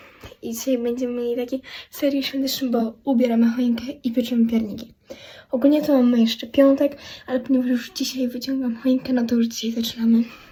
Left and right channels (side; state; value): both; identical; correlation 1.00